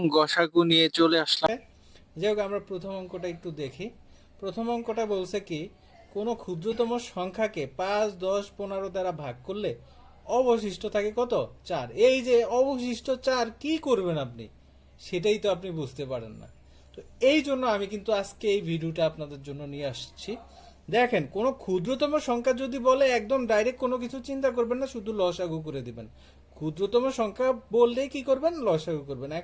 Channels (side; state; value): both; identical; correlation 1.00